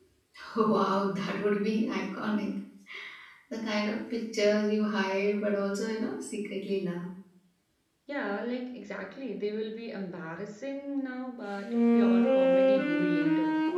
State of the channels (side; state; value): both; identical; correlation 1.00